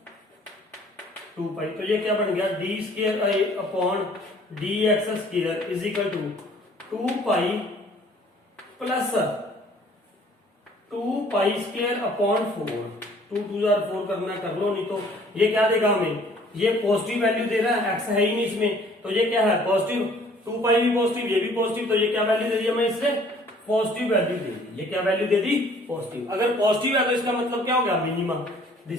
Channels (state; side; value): normal; both; correlation 0.56